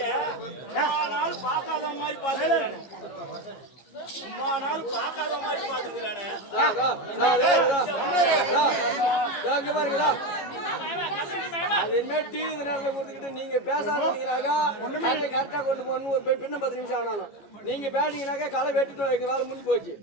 சும்மா நாள் பார்க்காத மாதிரி பார்த்துக்கிறானே. சும்மா நாள் பார்க்காத மாதிரி பார்த்துக்கிறானே. அதுமே டிவி நேரத்தில் கொடுத்துக்கிட்டு நீங்க பேசாதீங்கனாக்கா கரெக்டா கொண்டு போகணும். பின்ன 10 நிமிஷம் ஆனாலும் நீங்க பேசிங்கனாக்கா களை வெட்டிட்டு எங்களால முடிஞ்சு போச்சு.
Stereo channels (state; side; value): late; right; 14 ms